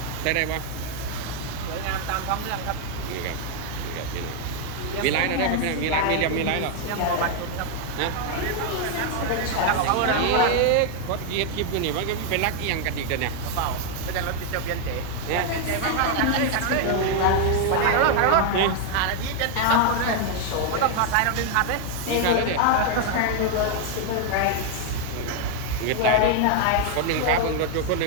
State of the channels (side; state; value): both; different; correlation 0.00